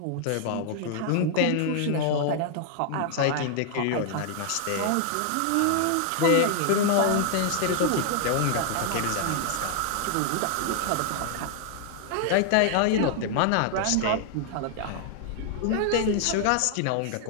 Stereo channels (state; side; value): different; both; correlation 0.00